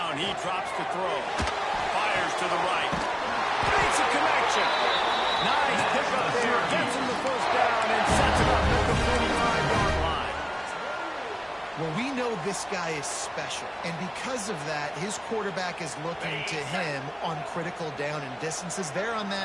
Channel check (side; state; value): both; identical; correlation 1.00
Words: he drops to throw. Fires to the right. Makes a connection. Nice pick up there. Gets him the first down and sets it up at the 45-yard line. Well, we know this guy is special, and because of that, his quarterback is looking to him on critical down and distances. There on